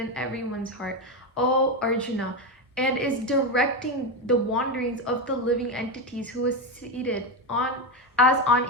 everyone's heart, O Arjuna, and is directing the wanderings of the living entities, who is seated as on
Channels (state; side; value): normal; both; correlation 0.13